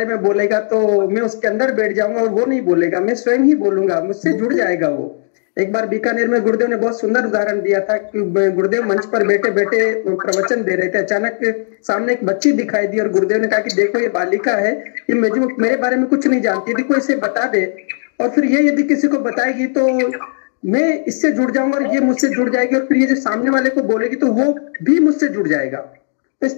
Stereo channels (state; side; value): silent; right; digital silence